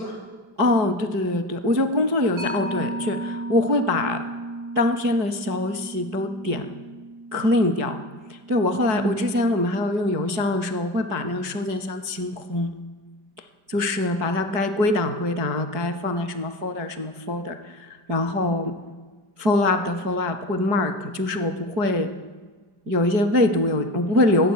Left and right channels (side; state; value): left; late; 5.0 ms